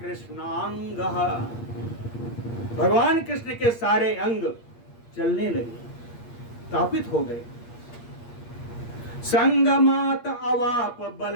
भगवान कृष्ण के सारे अंग चलने लगे, तापित हो गए। संगमात अवाप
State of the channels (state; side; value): late; right; 8.5 ms